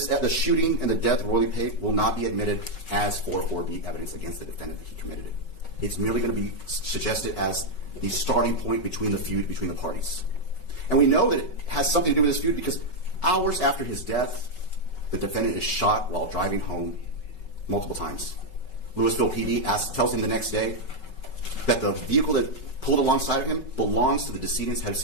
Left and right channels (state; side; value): late; right; 5.3 ms